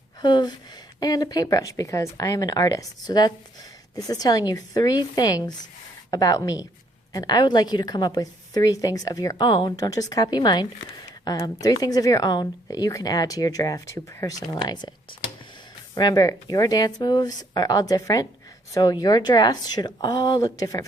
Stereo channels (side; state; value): both; normal; correlation 0.68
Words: hoof, and a paintbrush because I am an artist. So this is telling you 3 things about me, and I would like you to come up with 3 things of your own. Don't just copy mine. 3 things of your own that you can add to your giraffe to personalize it. Remember, your dance moves are all different, so your giraffes should all look different